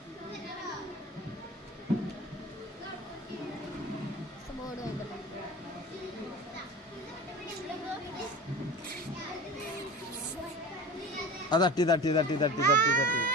ആ തട്ടി തട്ടി തട്ടി തട്ടി തട്ടി തട്ടി.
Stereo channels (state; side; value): normal; both; correlation 0.34